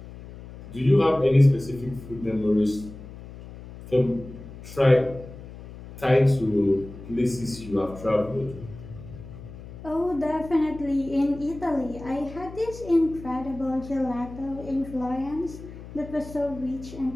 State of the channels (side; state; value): left; noise; hum, 15 dB below the sound